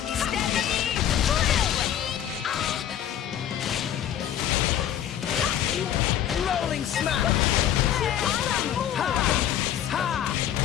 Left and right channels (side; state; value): right; quieter; 10.5 dB